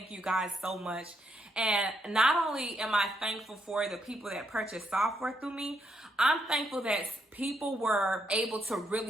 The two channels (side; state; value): both; normal; correlation 0.77